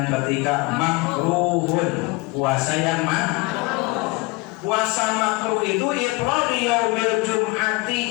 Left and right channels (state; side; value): quieter; right; 25.2 dB